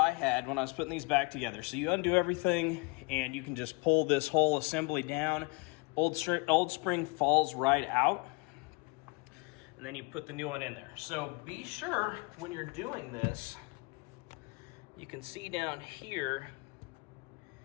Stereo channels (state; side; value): quieter; right; 28.8 dB